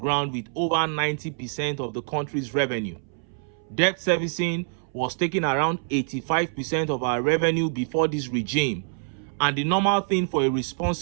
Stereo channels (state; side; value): silent; left; 61 dB below the other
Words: with over 90% of the country's revenue. Debt servicing was taking around 85% of our revenue before this regime, and the normal thing for a